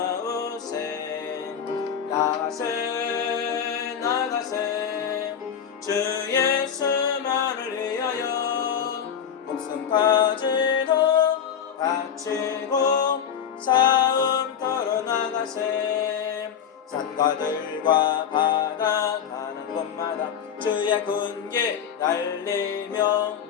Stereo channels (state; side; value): quieter; right; 8.1 dB